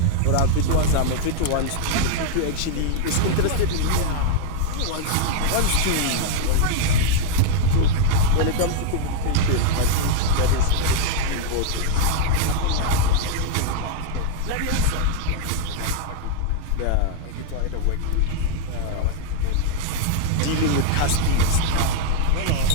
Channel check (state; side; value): different; both; correlation 0.00